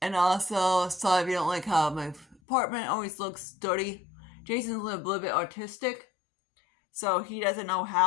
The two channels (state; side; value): drops out; right; at 2.4 s